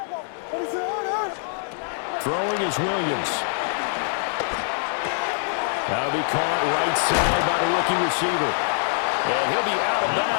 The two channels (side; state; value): right; silent; 55 dB below the other